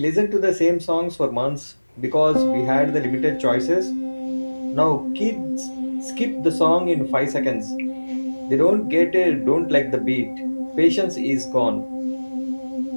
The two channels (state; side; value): inverted; both; correlation -1.00